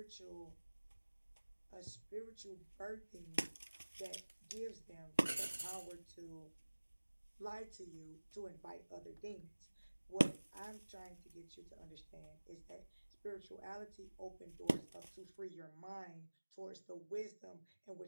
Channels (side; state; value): both; inverted; correlation -1.00